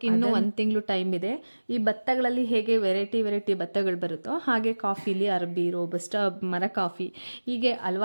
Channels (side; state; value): both; inverted; correlation -1.00